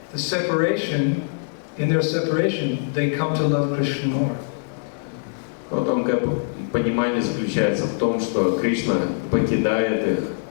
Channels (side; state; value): right; silent; digital silence